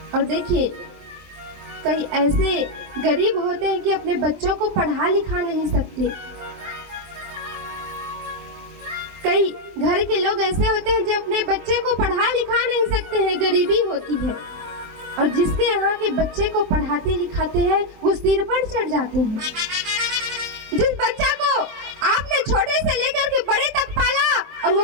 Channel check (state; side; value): late; left; 23 ms